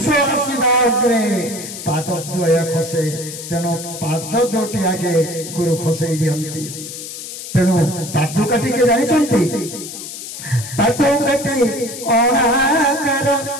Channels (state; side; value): noise; left; hiss, 10 dB below the sound